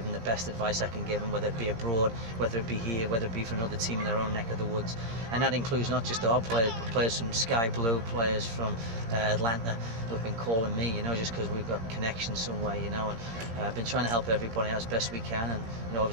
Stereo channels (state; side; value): late; left; 17 ms